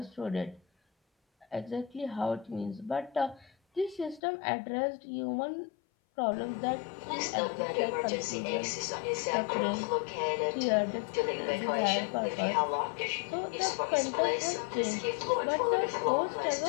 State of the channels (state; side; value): drops out; right; at 4.2 s